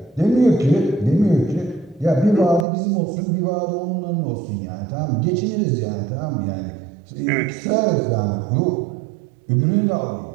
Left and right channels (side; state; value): left; drops out; at 2.7 s